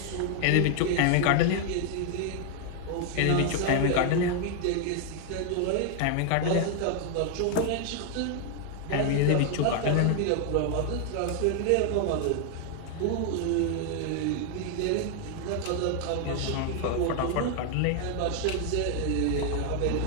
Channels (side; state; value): both; different; correlation 0.00